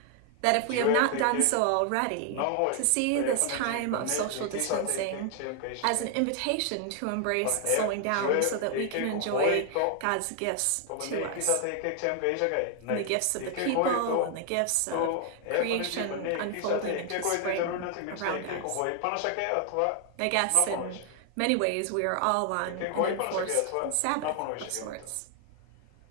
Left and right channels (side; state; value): both; different; correlation 0.00